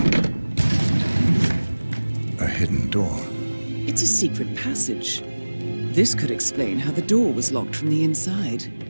A hidden door. It's a secret passage. This could explain how the door was locked from the inside.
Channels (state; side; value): inverted; both; correlation -1.00